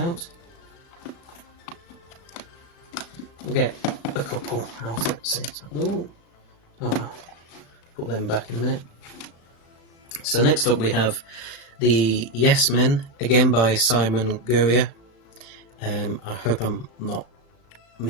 We'll get a couple out at the same time. Oh well. Put them back in a minute. So next up we have the Yes Men, again by Simon Guria. I hope I'm not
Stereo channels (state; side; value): late; right; 35 ms